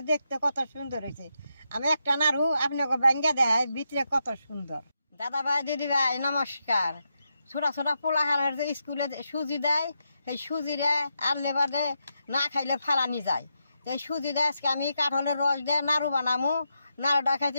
দেখতে কত সুন্দর হয়েছে আমি একটা নাড়ু আপনাকে ব্যাঙ্গে দেয় ভিতরে কত সুন্দর দাদা ভাই দিদি ভাই নমস্কার ছোটা ছোটা পোলাহানের যে স্কুলে সুজি দেয় সেই সুজিরে আনলে বাদে না খাইলে ফালানি যায় এই সুজি দেয় আজকে আমি কাঁঠালের রস দিয়ে নাড়ু বানামু নাড়ুটা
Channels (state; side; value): inverted; both; correlation -0.84